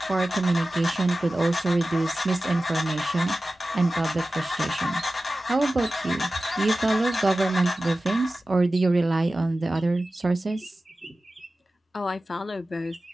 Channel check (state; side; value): normal; both; correlation 0.95